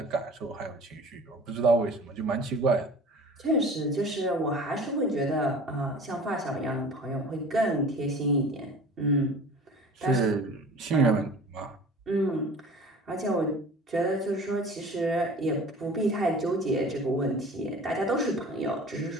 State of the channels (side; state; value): both; normal; correlation 0.42